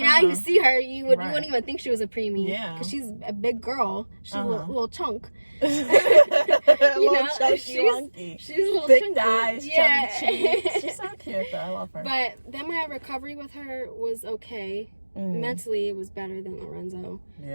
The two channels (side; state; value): both; inverted; correlation -1.00